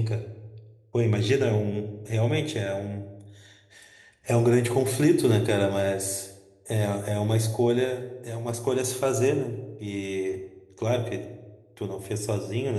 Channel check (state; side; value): identical; both; correlation 1.00